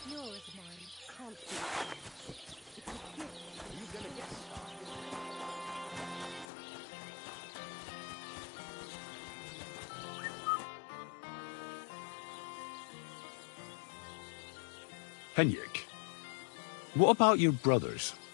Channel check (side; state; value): right; drops out; at 6.5 s